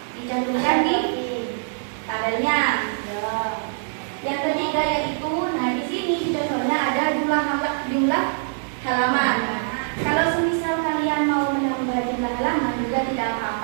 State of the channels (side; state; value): left; silent; 63 dB below the other